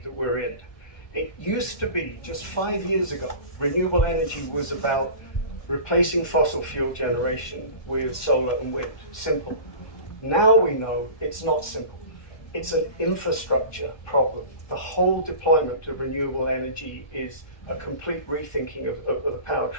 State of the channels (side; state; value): right; late; 1.3 ms